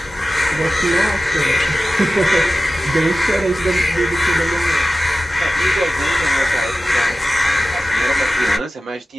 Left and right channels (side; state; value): both; normal; correlation 0.95